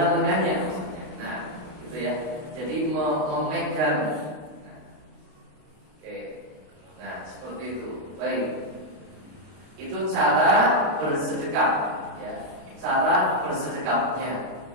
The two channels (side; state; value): left; late; 32 ms